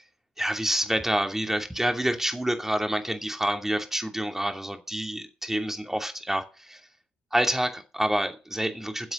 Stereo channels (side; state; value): both; normal; correlation 0.95